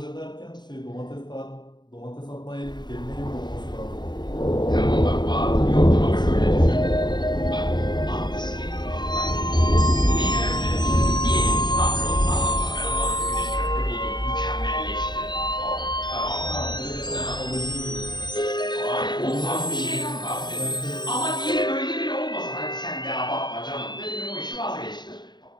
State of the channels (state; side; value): late; right; 0.21 ms